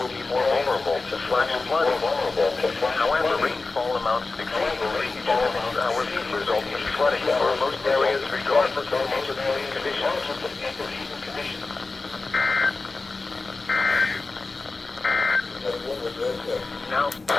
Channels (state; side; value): quieter; right; 3.7 dB